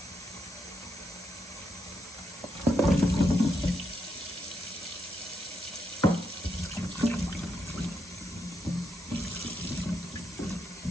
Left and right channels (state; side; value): normal; both; correlation 0.81